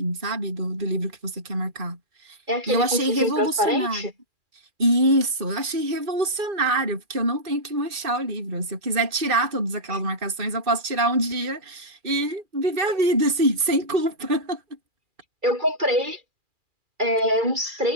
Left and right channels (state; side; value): late; left; 2.6 ms